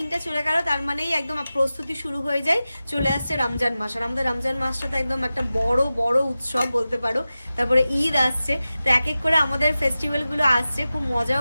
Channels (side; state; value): both; inverted; correlation -0.95